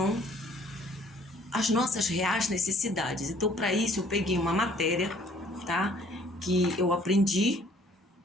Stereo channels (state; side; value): normal; both; correlation 0.58